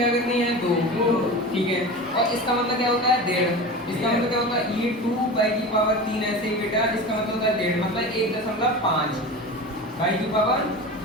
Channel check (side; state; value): both; normal; correlation 0.31